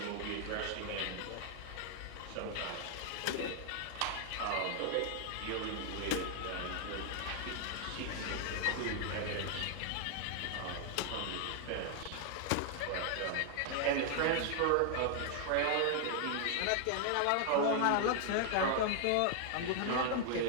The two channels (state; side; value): different; both; correlation 0.00